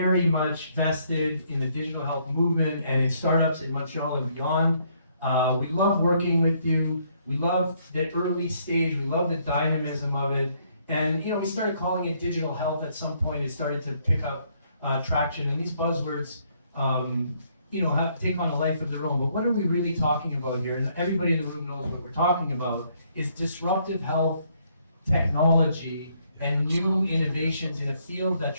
much vested in the digital health movement and in startups in Montreal and beyond. We love working with you. We love the early stage. We love the dynamism of it. And we started calling it digital health at some point. It started to pick up traction. And these buzzwords, take on a life of their own. But what are we really talking about here? And everybody in the room knows what we're talking about. Is disruptive health technology and new innovations in a field that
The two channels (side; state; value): both; inverted; correlation -0.69